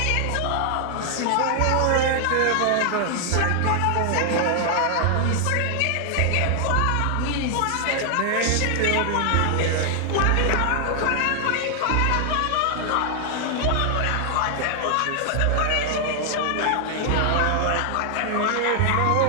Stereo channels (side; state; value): both; different; correlation 0.00